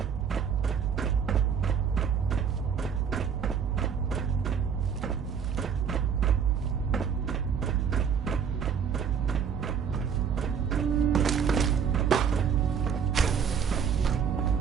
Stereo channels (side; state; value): left; quieter; 7.2 dB